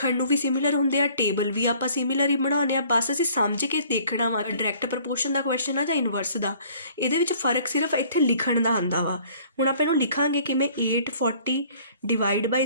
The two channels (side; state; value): both; inverted; correlation -0.55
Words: ਨੂੰ ਵੀ ਸਿਮਿਲਰ ਹੁੰਦੇ ਆ, ਟੇਬਲ ਵੀ ਆਪਾਂ ਸਿਮਿਲਰ ਹੀ ਬਣਾਉਂਦੇ ਆ, ਬਸ ਅਸੀਂ ਸਮਝ ਕੇ ਦੇਖਣਾ ਵਾ ਡਾਇਰੈਕਟ ਪ੍ਰਪੋਰਸ਼ਨ ਦਾ ਕੁਐਸਚਨ ਆ ਜਾਂ ਇਨਵਰਸ ਦਾ। ਇਹਦੇ ਵਿੱਚ ਫਰਕ ਸਿਰਫ ਇੱਥੇ ਲਿਖਣ ਦਾ ਆਉਂਦਾ ਵਾ। ਹੁਣ ਆਪਾਂ ਇਹਨੂੰ ਲਿਖਾਂਗੇ ਕਿਵੇਂ, 840 divide by